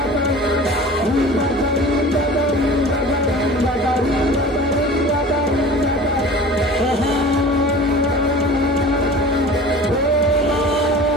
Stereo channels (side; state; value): both; normal; correlation 0.40